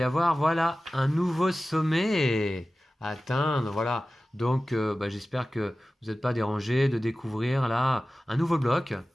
avoir, voilà, un nouveau sommet à atteindre, voilà. Donc, j'espère que vous n'êtes pas dérangés de découvrir là un nouveau bloc.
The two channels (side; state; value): both; normal; correlation 0.96